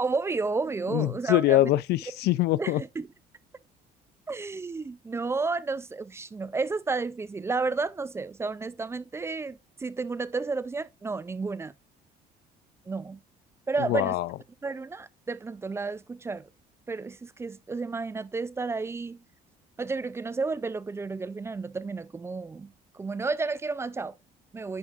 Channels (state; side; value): normal; both; correlation 0.50